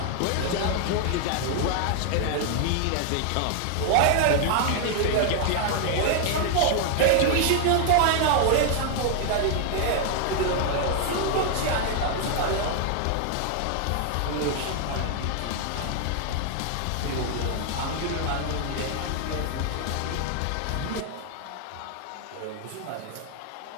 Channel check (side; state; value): both; different; correlation 0.00